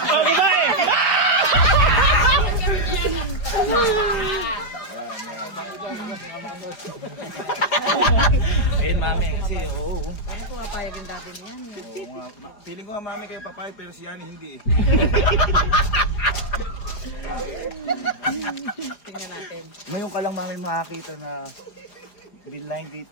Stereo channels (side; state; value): right; late; 4.8 ms